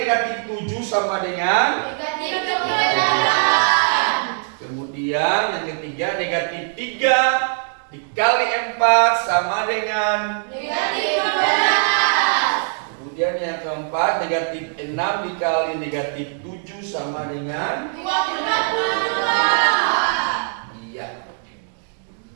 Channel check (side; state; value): left; silent; 61 dB below the other